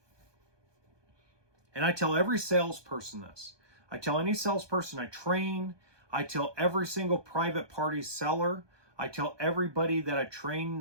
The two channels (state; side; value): late; left; 1.2 ms